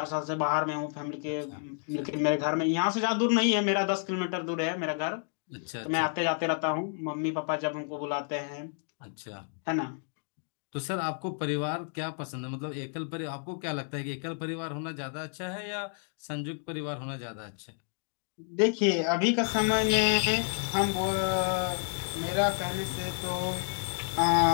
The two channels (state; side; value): silent; right; 58 dB below the other